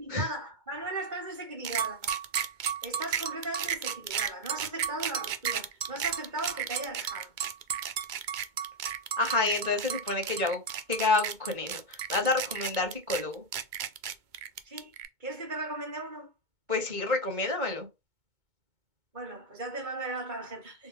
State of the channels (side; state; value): left; late; 2.2 ms